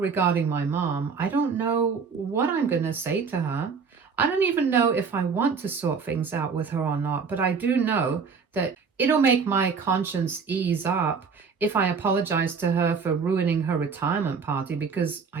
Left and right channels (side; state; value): left; quieter; 5.6 dB